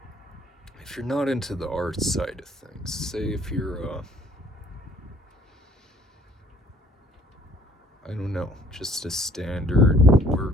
if you're not into the art side of things, say if you're, I don't know, just a standard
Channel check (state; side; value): normal; both; correlation 0.59